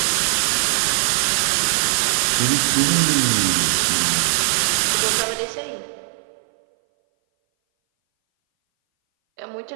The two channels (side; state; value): left; silent; 60 dB below the other